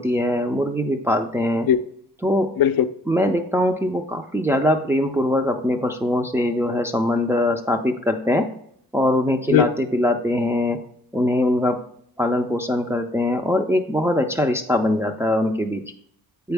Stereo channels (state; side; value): normal; both; correlation 0.62